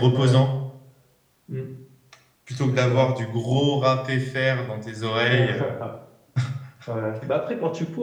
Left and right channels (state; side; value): identical; both; correlation 1.00